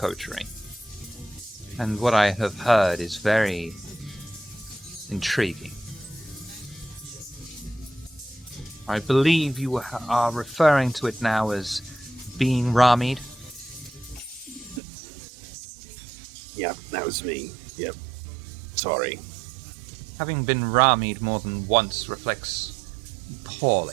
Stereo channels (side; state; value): left; drops out; at 14.8 s